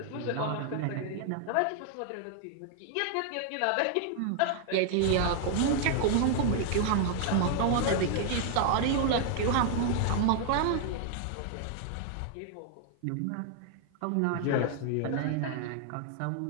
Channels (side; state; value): both; different; correlation 0.00